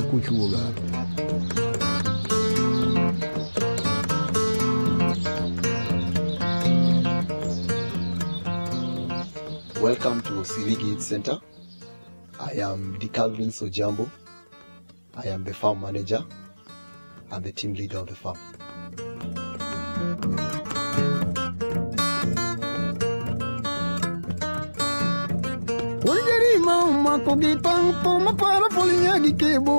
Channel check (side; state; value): both; inverted; correlation -1.00